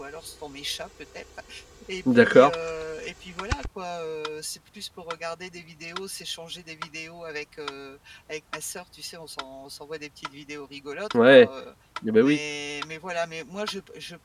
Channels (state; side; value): identical; both; correlation 1.00